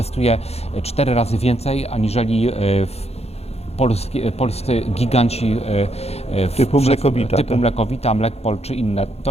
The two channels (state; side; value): late; right; 0.30 ms